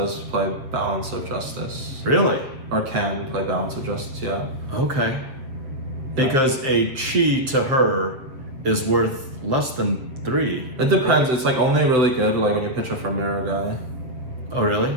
play Balance of Justice. Really? Or can play Balance of Justice, yeah. Okay. Because a chi to her is worth less than 3. It depends. Right? It's like only really good like when you pitch her for Mirror Guy. Oh really?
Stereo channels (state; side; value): late; left; 7.5 ms